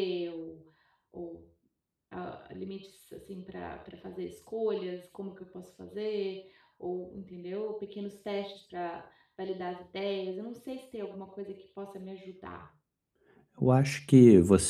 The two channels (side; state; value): both; identical; correlation 1.00